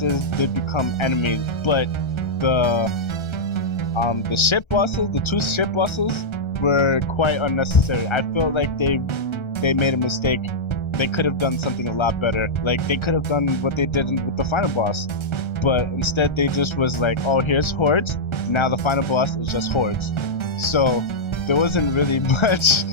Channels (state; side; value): late; right; 1.3 ms